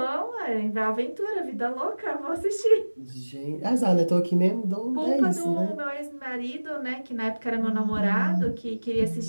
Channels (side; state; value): both; inverted; correlation -1.00